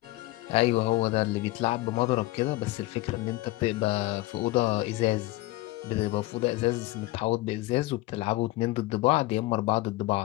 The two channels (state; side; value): quieter; right; 18.9 dB